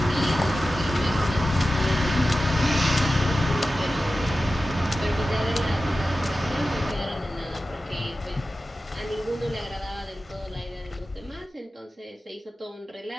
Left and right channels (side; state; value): both; normal; correlation 0.94